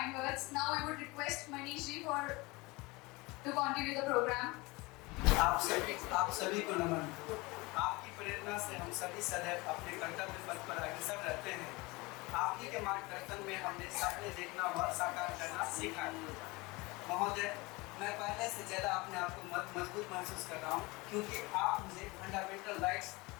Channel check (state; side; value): quieter; right; 23.9 dB